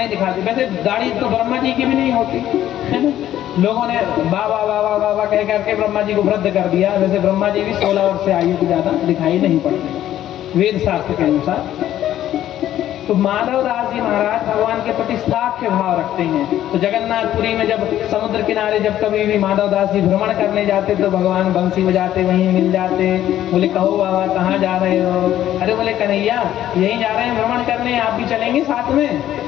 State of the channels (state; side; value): quieter; right; 12.3 dB